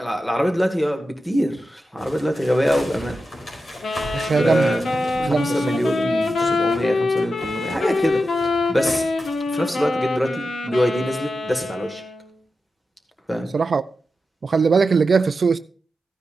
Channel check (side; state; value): both; normal; correlation 0.90